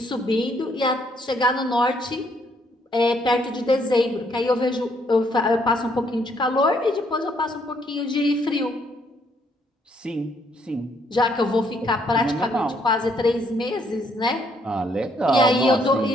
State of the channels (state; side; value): normal; both; correlation 0.69